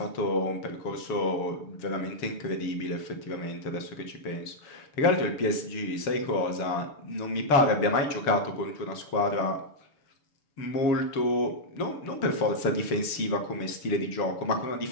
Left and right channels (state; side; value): late; right; 6.9 ms